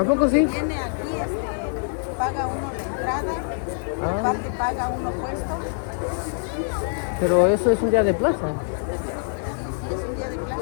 poco sí? Viene aquí, paga uno la entrada, aparte paga uno puesto. Pero eso es un día de plaza. Sí, es un día de plaza,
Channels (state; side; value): silent; right; 62 dB below the other